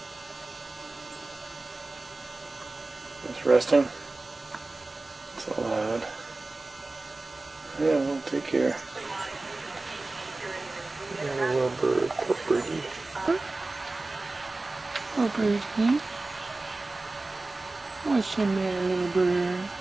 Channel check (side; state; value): left; quieter; 3.2 dB